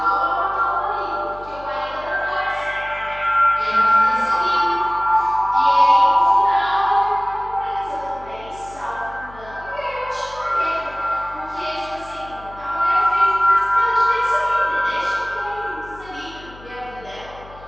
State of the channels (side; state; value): left; noise; hum, 20 dB below the sound